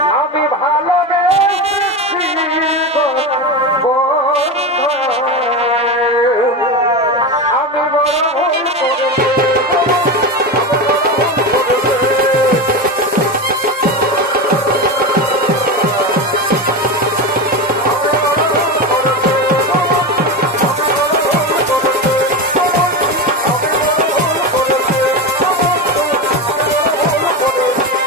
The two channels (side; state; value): both; normal; correlation 0.20